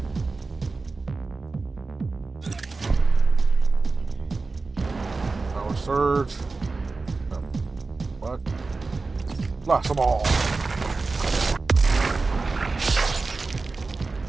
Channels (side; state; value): left; quieter; 3.9 dB